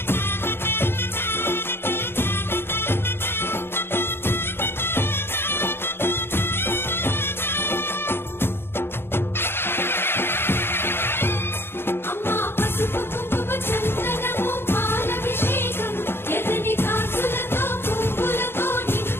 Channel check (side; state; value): right; late; 0.11 ms